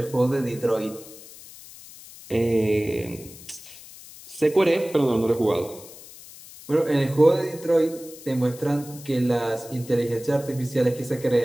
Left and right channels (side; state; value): left; noise; hiss, 18 dB below the sound